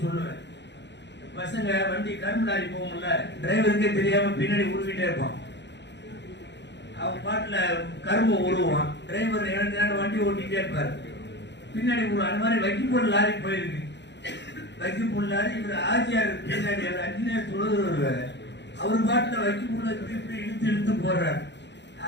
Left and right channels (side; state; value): right; late; 0.51 ms